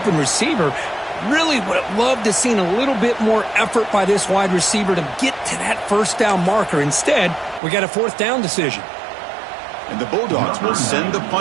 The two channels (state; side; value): drops out; left; at 7.6 s